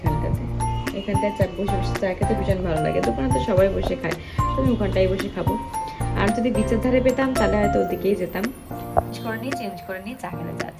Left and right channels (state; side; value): identical; both; correlation 1.00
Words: বসে বসে চা খেতে ভীষণ ভালো লাগে। দোকানে তো সবাই বসে খায়, তো আমি ওখানটাই বসে খাবো। আর যদি বিচের ধারে পেতাম তাহলে হয়তো ওদিকেই যেতাম। চেঞ্জ করে নিয়ে চা খেতে যা